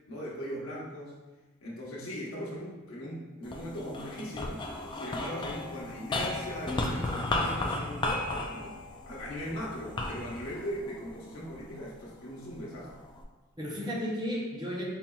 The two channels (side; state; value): both; normal; correlation 0.41